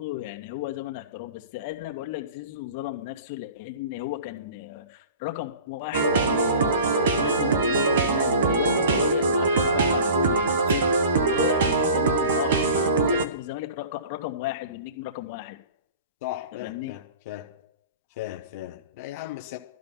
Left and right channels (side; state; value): both; inverted; correlation -0.40